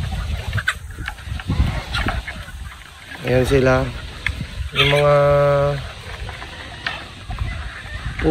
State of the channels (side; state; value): both; identical; correlation 1.00